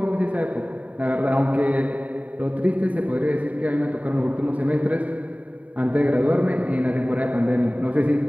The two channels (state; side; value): late; left; 0.069 ms